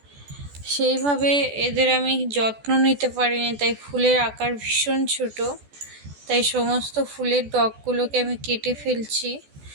সেইভাবে এদের আমি যত্ন নিতে পারিনি, তাই ফুলের আকার ভীষণ ছোট। তাই সমস্ত ফুলের ডগগুলোকে আমি কেটে ফেলছি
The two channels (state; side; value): late; left; 14 ms